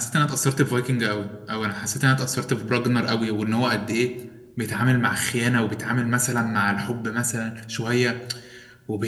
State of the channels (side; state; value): both; identical; correlation 1.00